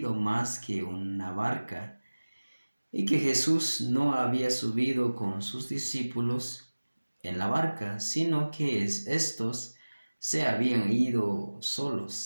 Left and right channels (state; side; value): inverted; both; correlation -1.00